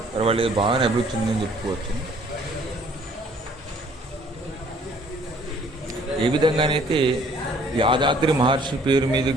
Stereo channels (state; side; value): normal; both; correlation 0.58